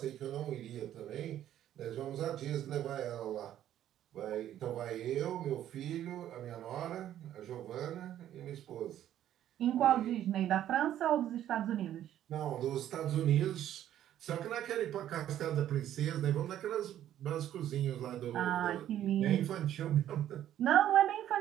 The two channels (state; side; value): quieter; left; 11.6 dB